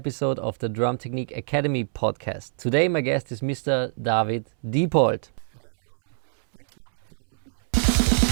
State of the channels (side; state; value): left; silent; 62 dB below the other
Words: of the Drum Technique Academy podcast. Today, my guest is Mr. David Diepold. Hello, everyone. Thanks, Martin, for having me.